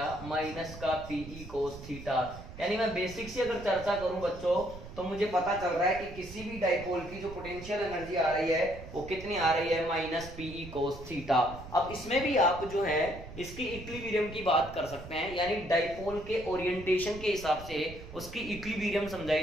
माइनस का पीई कोस थीटा। यानी मैं बेसिक से अगर चर्चा करूं बच्चों, तो मुझे पता चल रहा है कि किसी भी डाइपोल की जो पोटेंशियल एनर्जी आ रही है वो कितनी आ रही है, माइनस पीई कोस थीटा। अब इसमें भी आप जो है इसकी इक्विलिब्रियम की बात कर सकते हैं, यानी डाइपोल के ओरिएंटेशन के हिसाब से उसकी इक्विलिब्रियम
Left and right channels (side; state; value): right; noise; rumble, 14 dB below the sound